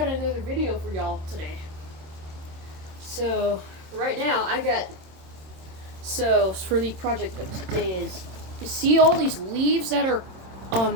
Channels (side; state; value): left; late; 26 ms